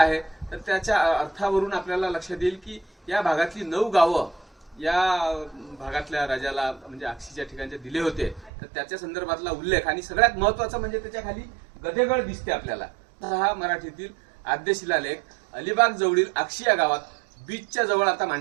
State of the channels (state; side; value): drops out; left; at 8.5 s